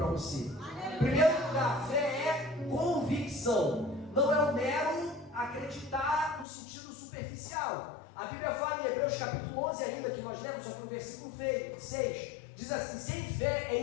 você. Em primeiro lugar, fé é convicção, não é um mero acreditar no sentido superficial. A Bíblia fala em Hebreus capítulo 11 ainda, que nós lemos, só que no versículo 6, diz assim: sem fé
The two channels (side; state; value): right; drops out; at 6.5 s